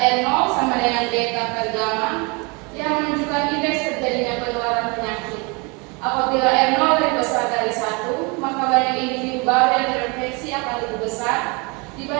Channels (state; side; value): quieter; left; 29.9 dB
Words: sama dengan beta per gamma yang menunjukkan indeks terjadinya penularan penyakit. Apabila R0 lebih besar dari 1, maka banyak individu baru yang terinfeksi akan lebih besar